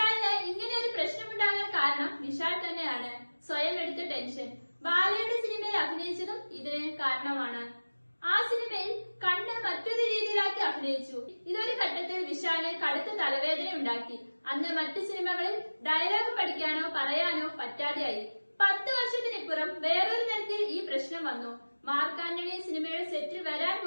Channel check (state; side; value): inverted; both; correlation -1.00